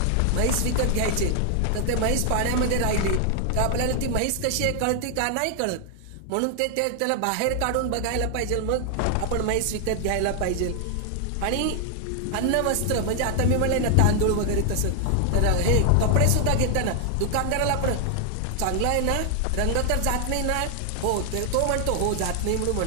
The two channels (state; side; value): different; both; correlation 0.00